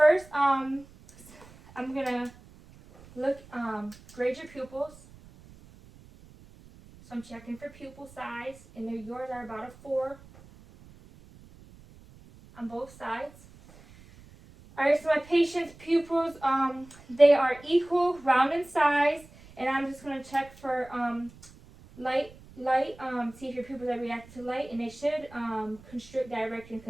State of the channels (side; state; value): right; noise; rumble, 22 dB below the sound